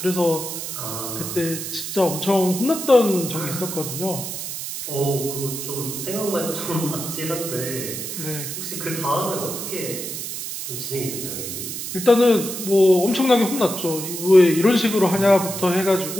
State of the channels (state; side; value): noise; right; hiss, 6 dB below the sound